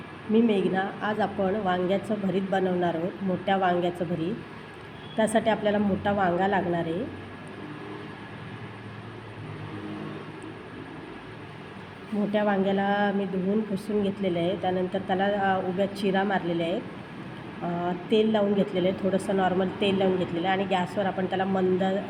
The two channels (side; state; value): both; identical; correlation 1.00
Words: मी मेघना. आज आपण वांग्याचं भरीत बनवणार आहोत, मोठ्या वांग्याचं भरीत. त्यासाठी आपल्याला मोठा वांगा लागणार आहे. मोठ्या वांग्याला मी धुवून पुसून घेतलेलं आहे. त्यानंतर त्याला उभ्या चिरा मारलेल्या आहेत. तेल लावून घेतलेलं आहे, थोडंसं नॉर्मल तेल लावून घेतलेलं आहे आणि गॅसवर आपण त्याला मंद